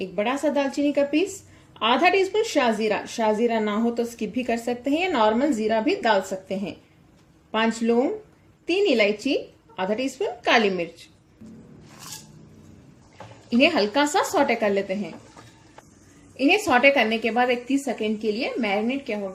1 बड़ा सा दालचीनी का पीस, आधा टीस्पून शाहजीरा। शाहजीरा ना हो तो स्किप भी कर सकते हैं या नॉर्मल जीरा भी डाल सकते हैं। 5 लौंग, 3 इलायची, आधा टीस्पून काली मिर्च। इन्हें हल्का सा सौटे कर लेते हैं। इन्हें सौटे करने के बाद 30 सेकेंड के लिए मैरिनेट किया हुआ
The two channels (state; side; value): identical; both; correlation 1.00